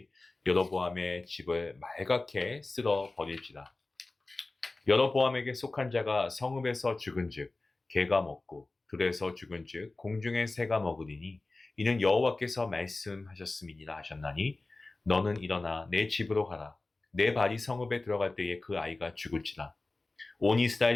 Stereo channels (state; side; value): quieter; right; 3.2 dB